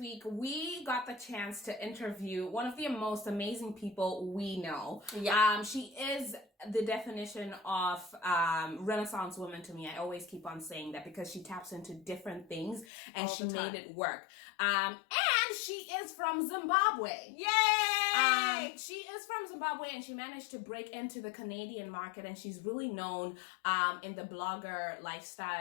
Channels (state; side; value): drops out; right; at 12.9 s